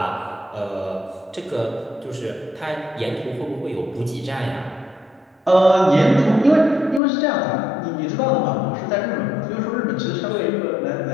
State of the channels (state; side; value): drops out; right; at 7.0 s